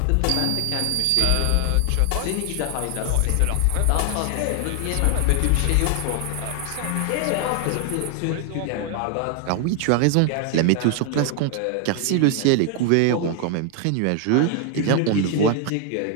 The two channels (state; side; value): different; both; correlation 0.00